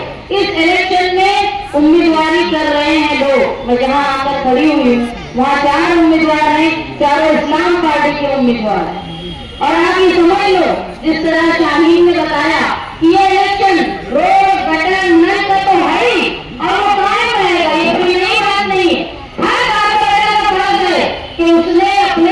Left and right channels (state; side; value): identical; both; correlation 1.00